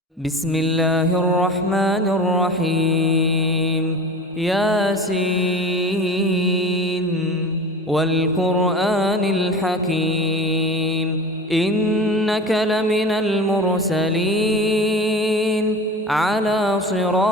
بسم الله الرحمن الرحيم ياسين والقرآن الحكيم إنك لمن المرسلين على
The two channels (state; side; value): normal; both; correlation 0.35